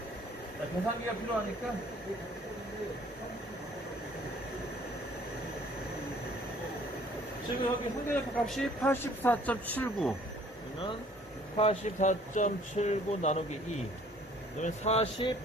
자, 계산기가 필요하니까 지금 여기 상대적 값이 84.79 그러면 84.79 나누기 2 그러면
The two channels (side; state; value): both; normal; correlation 0.56